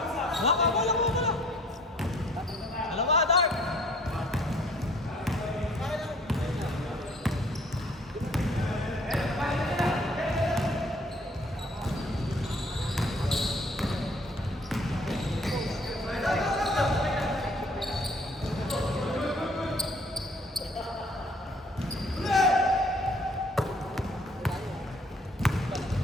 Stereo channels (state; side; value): normal; both; correlation 0.57